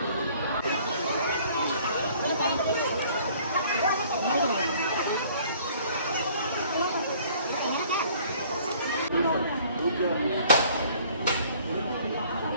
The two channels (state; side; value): inverted; both; correlation -0.56